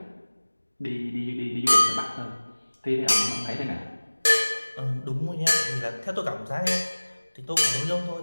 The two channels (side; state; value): both; inverted; correlation -1.00